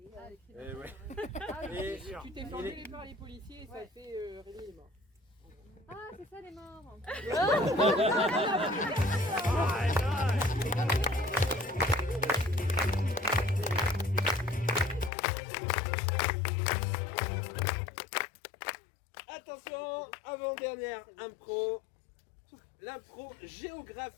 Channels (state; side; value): drops out; right; at 15.1 s